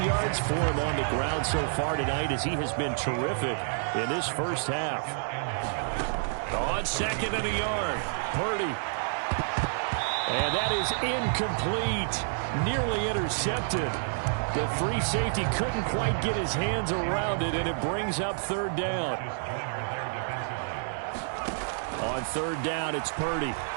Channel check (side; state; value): left; silent; digital silence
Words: yards for him on the ground so far tonight as he has been terrific in this first half. On 2nd and a yard, Purdy. And that is incomplete. Nearly intercepted. The free safety couldn't quite get his hands around it, and it brings up 3rd down. On 3rd down, it's Purdy.